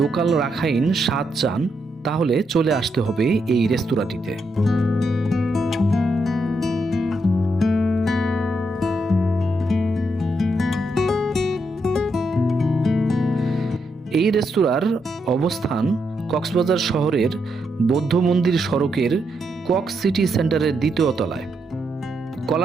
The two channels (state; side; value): normal; both; correlation 0.80